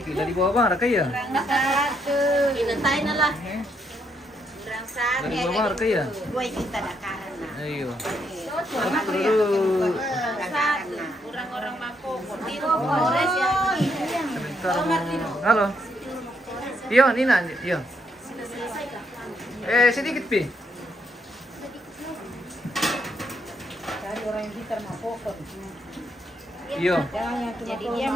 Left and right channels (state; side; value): normal; both; correlation 0.75